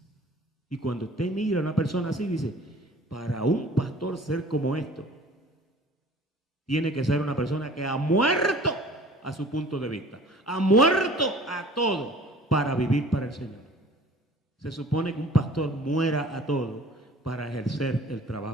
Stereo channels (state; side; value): normal; both; correlation 0.48